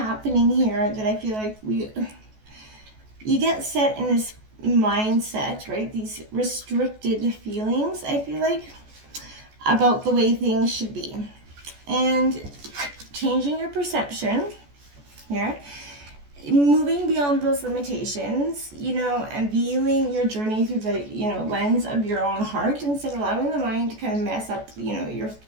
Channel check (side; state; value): left; late; 14 ms